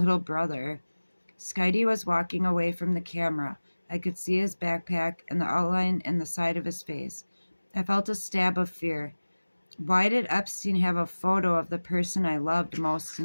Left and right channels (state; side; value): inverted; both; correlation -1.00